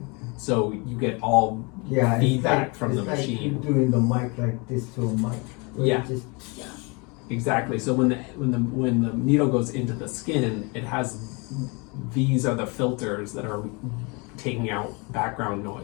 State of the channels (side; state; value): right; quieter; 29.8 dB